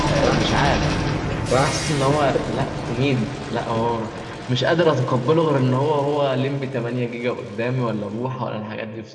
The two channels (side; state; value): both; identical; correlation 1.00